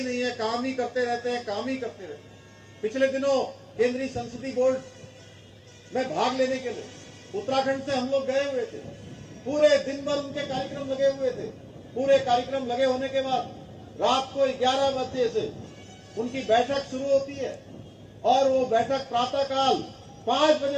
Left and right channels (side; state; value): both; identical; correlation 1.00